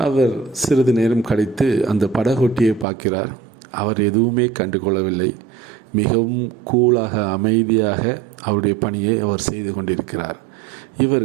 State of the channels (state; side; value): drops out; left; at 2.9 s